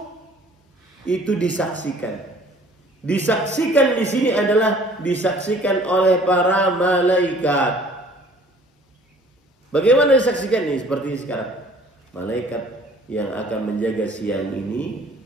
itu disaksikan. Disaksikan di sini adalah disaksikan oleh para malaikat. Bagaimana disaksikan ini? Seperti sekarang, malaikat yang akan menjaga siang ini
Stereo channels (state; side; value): normal; both; correlation 0.53